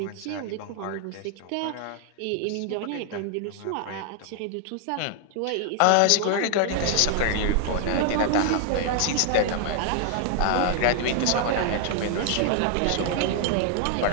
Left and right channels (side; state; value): both; different; correlation 0.00